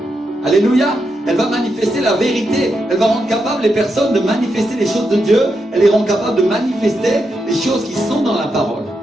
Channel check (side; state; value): both; normal; correlation 0.84